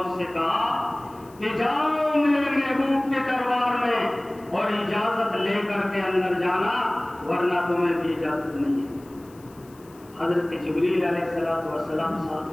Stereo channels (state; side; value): noise; left; hiss, 27 dB below the sound